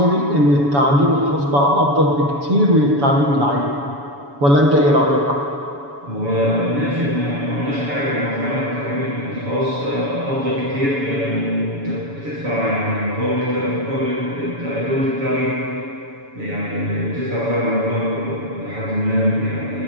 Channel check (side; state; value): left; late; 7.1 ms